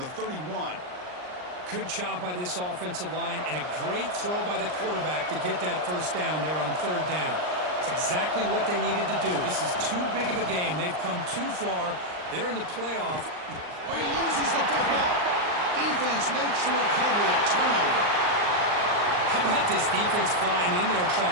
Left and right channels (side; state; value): left; late; 39 ms